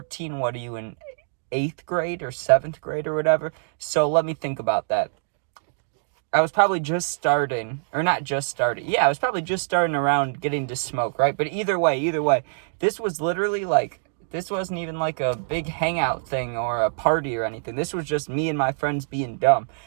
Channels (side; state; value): left; silent; digital silence